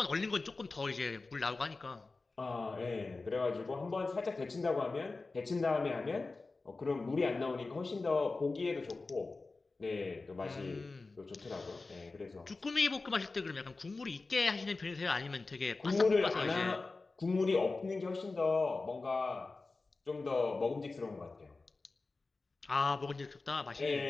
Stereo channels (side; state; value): right; quieter; 3.7 dB